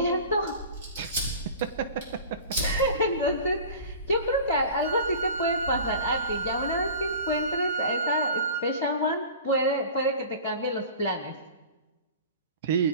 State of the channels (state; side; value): inverted; both; correlation -0.40